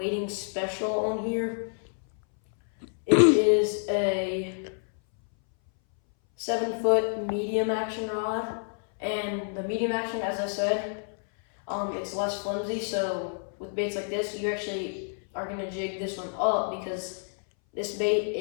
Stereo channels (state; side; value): silent; right; 59 dB below the other